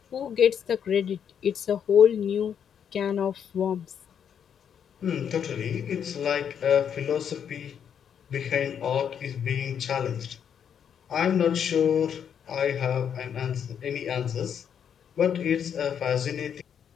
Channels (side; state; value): right; quieter; 8.2 dB